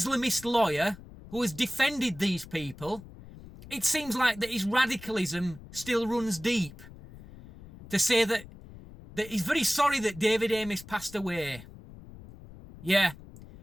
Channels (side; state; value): left; noise; rumble, 18 dB below the sound